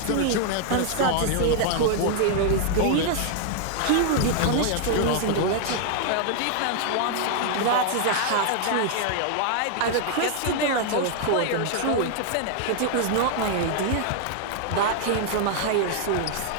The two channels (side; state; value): both; different; correlation 0.00